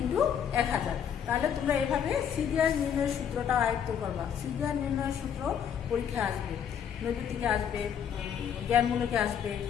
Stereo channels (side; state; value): right; quieter; 8.3 dB